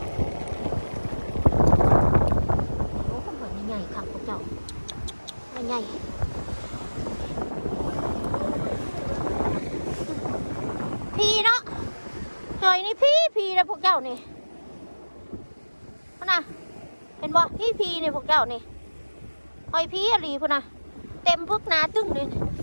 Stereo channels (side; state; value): both; inverted; correlation -1.00